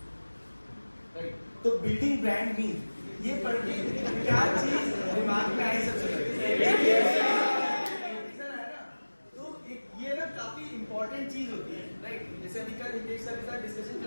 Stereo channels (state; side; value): inverted; both; correlation -1.00